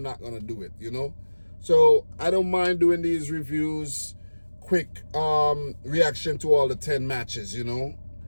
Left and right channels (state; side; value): inverted; both; correlation -1.00